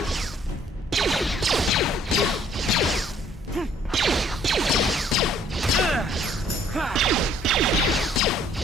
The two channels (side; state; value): both; normal; correlation 0.60